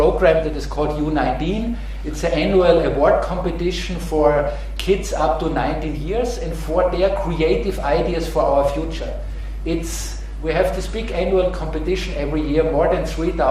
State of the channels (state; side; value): identical; both; correlation 1.00